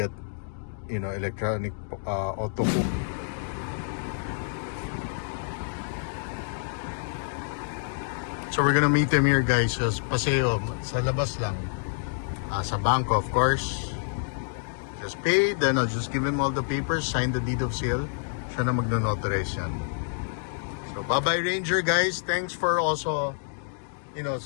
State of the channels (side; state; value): right; silent; digital silence